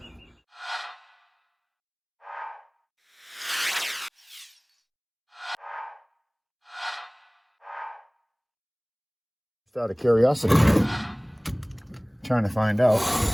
Just out of curiosity, trying to find out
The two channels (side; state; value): both; identical; correlation 1.00